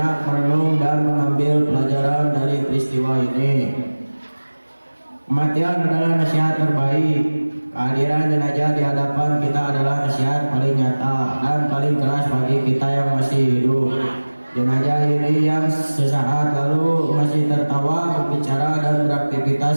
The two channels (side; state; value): both; inverted; correlation -1.00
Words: merenung dan mengambil pelajaran dari peristiwa ini. Kematian adalah nasihat terbaik. Kehadiran jenazah di hadapan kita adalah nasihat paling nyata dan paling keras bagi kita yang masih hidup. Jenazah ini yang sesaat lalu masih tertawa, berbicara dan